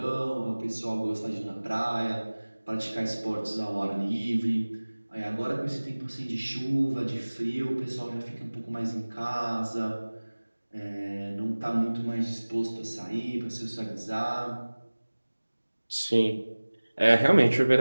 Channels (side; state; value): both; inverted; correlation -1.00